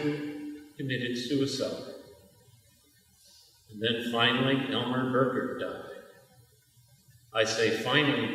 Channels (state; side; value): identical; both; correlation 1.00